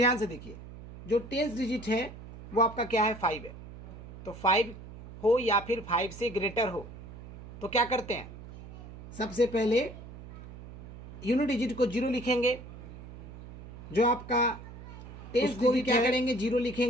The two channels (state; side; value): noise; right; hum, 15 dB below the sound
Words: से देखिए, जो टेंस डिजिट है वो आपका क्या है, 5 है। तो 5 हो या फिर 5 से ग्रेटर हो तो क्या करते हैं, सबसे पहले यूनिट डिजिट को 0 लिखेंगे, जो आपका टेंस डिजिट क्या करेंगे 0